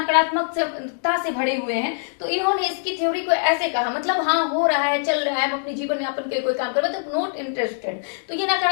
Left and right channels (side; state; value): right; silent; digital silence